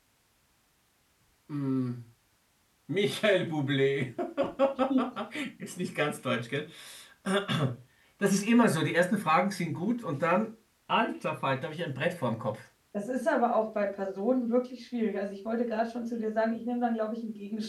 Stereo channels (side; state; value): both; identical; correlation 1.00